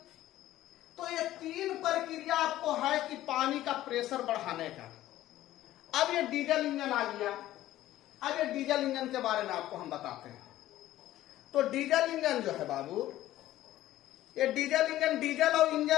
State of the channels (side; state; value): right; quieter; 14.4 dB